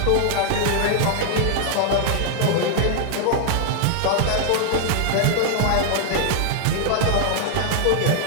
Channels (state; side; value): different; both; correlation 0.00